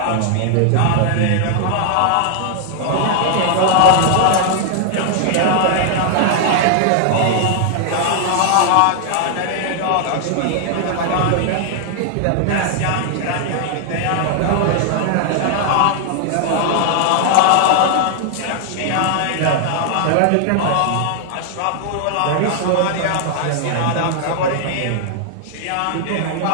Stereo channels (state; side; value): different; both; correlation 0.00